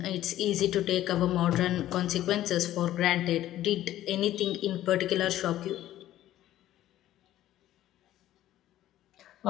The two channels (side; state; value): right; quieter; 13.5 dB